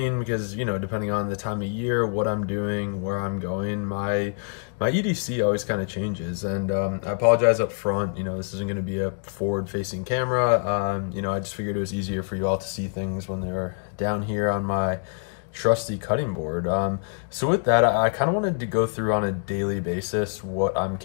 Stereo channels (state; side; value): silent; right; 61 dB below the other